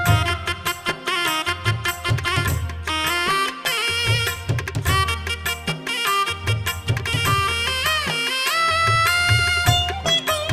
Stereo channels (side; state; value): both; identical; correlation 1.00